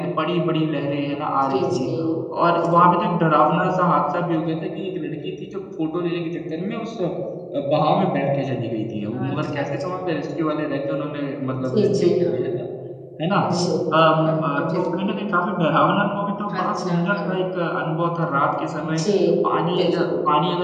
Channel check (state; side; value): identical; both; correlation 1.00